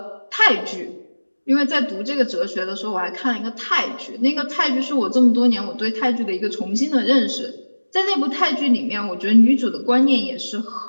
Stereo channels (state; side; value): inverted; both; correlation -1.00